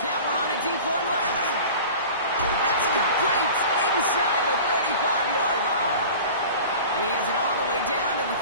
on a deep one left. That's complete inside the 35-yard line. And he has it all the way down to the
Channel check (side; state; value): both; inverted; correlation -0.39